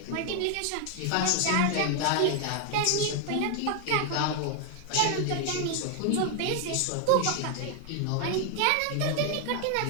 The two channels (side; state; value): both; different; correlation 0.00